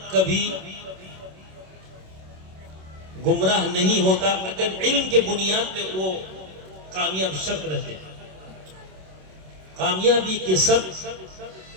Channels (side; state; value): left; late; 27 ms